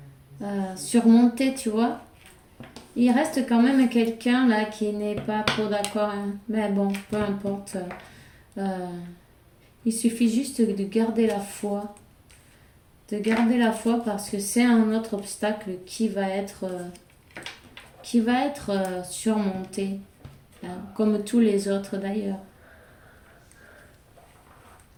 surmontées, tu vois. Il reste quand même quelqu'un là qui n'est pas trop d'accord. Hein. Mais bon, peu importe. Euh, il suffit juste de garder la foi. De garder la foi parce que c'est un autre obstacle qui va être surmonté, hein, comme tous les autres d'ailleurs.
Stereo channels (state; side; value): identical; both; correlation 1.00